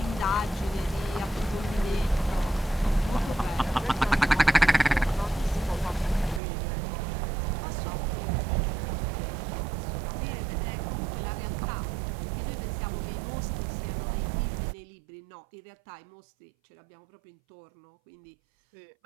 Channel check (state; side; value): drops out; left; at 6.4 s